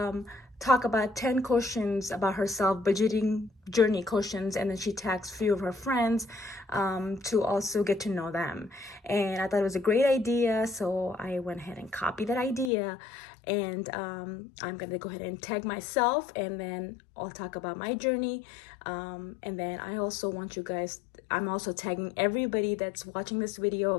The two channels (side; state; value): right; drops out; at 12.7 s